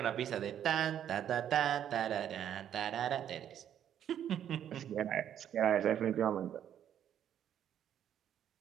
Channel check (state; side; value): quieter; left; 10.0 dB